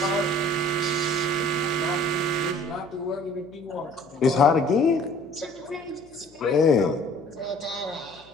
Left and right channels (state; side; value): noise; left; hum, 27 dB below the sound